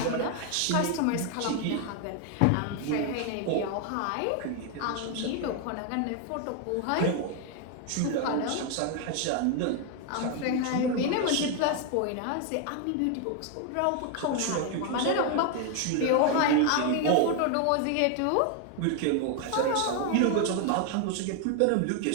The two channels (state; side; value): different; both; correlation 0.01